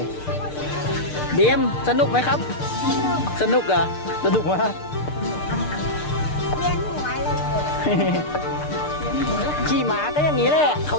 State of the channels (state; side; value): late; right; 6.6 ms